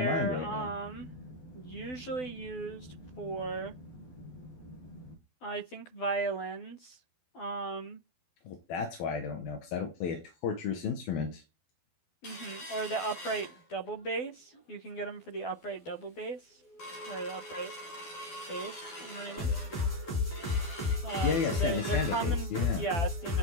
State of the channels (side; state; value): right; late; 12 ms